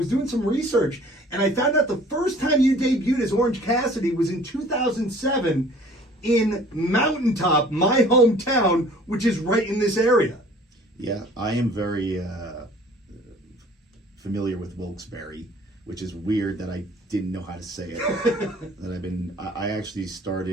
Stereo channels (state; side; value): normal; both; correlation 0.51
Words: doing some research, and I found out the first time you debuted as Orange Cassidy was in 2007 in Mountaintop, my hometown, which is right in this area. Yeah, I am very familiar with Wilkes-Barre, which is weird that I didn't know how to say it. I actually